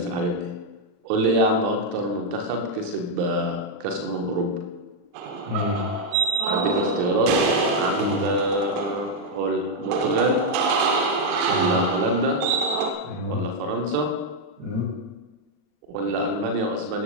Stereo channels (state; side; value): late; left; 40 ms